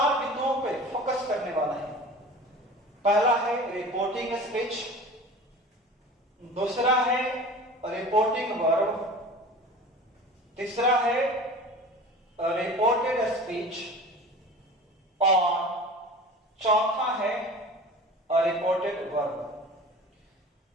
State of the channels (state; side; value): normal; both; correlation 0.38